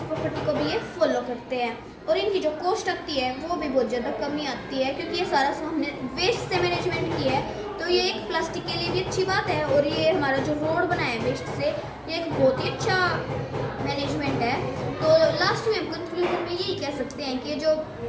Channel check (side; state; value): both; identical; correlation 1.00